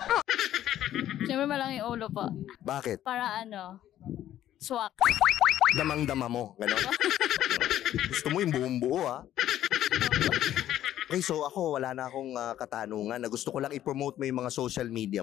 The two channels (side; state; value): right; quieter; 12.2 dB